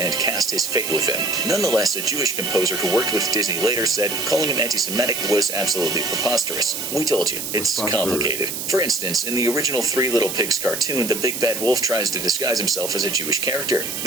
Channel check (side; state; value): right; noise; hiss, 5 dB below the sound